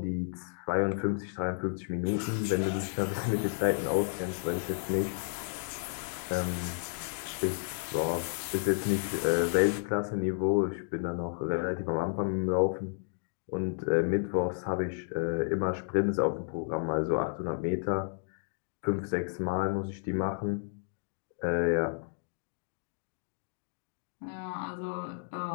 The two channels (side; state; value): right; silent; digital silence